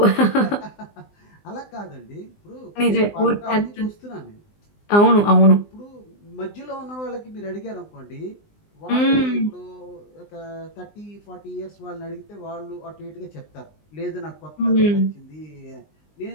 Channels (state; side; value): late; right; 19 ms